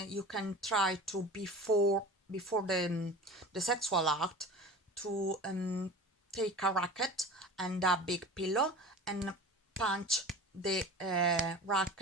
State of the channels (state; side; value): normal; both; correlation 0.36